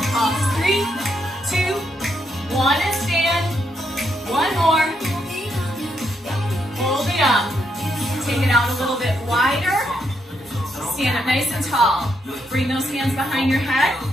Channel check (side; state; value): both; normal; correlation 0.78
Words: Pulse 3, 2, 1, and stand. One more. Hold it up. Take it out a little bit wider. Stand up nice and tall. Bring those hands behind your head.